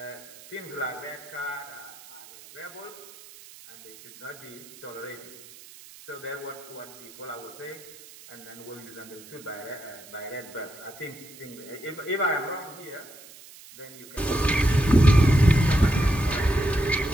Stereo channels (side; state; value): right; noise; hiss, 19 dB below the sound